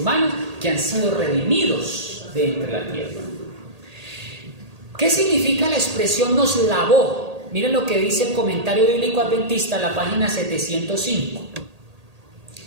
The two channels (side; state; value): left; late; 1.8 ms